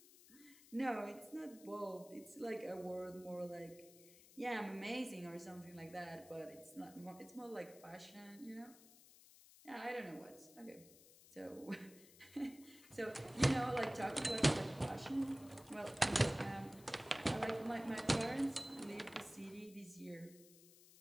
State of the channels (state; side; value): noise; left; hiss, 21 dB below the sound